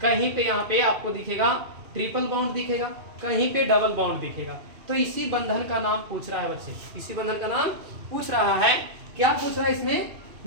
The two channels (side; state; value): left; late; 2.7 ms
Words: पे यहाँ पे आपको दिखेगा ट्रिपल बॉन्ड दिखेगा, कहीं पे डबल बॉन्ड दिखेगा। तो इसी बंधन का नाम पूछ रहा है बच्चे, क्या पूछ रहा है इसमें।